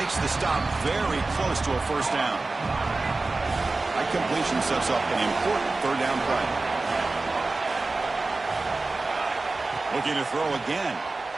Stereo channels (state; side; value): quieter; left; 3.4 dB